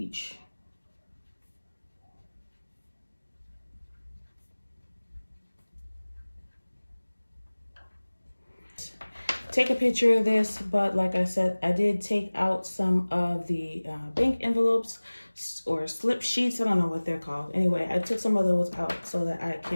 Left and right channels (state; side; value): inverted; both; correlation -1.00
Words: Take a picture of this, but like I said, I did take out some of the bank envelopes or slip sheets. I don't know what they're called. Anyway, I took some of those out so that I